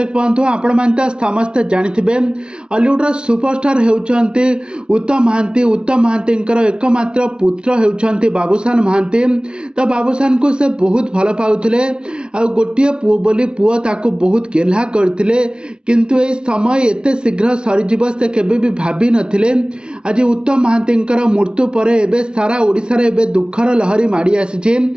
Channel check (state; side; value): late; left; 0.050 ms